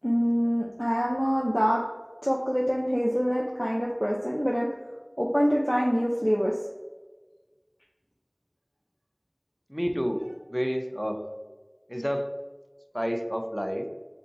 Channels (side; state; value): both; identical; correlation 1.00